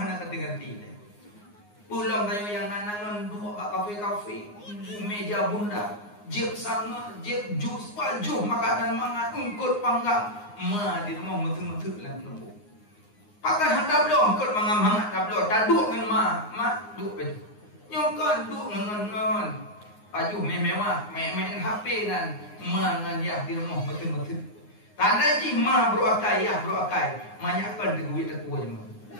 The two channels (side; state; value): right; late; 9.6 ms